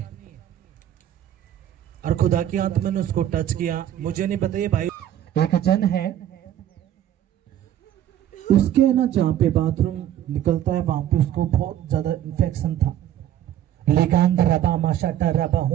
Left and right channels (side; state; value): left; quieter; 11.4 dB